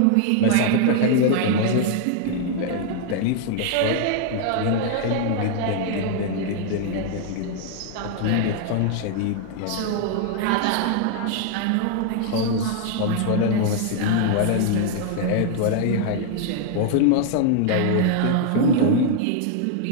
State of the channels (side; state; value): both; different; correlation 0.00